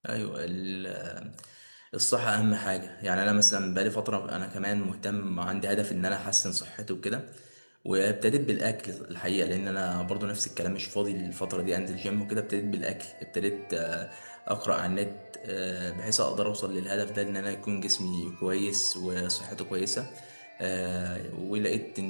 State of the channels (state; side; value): inverted; both; correlation -1.00